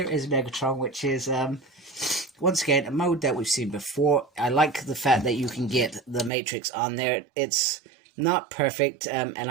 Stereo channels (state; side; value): drops out; left; at 6.3 s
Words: is Megatron, which is, once again, a mode that we've seen before. I like the fact that you can get the Matrix on there. It's not perfect, and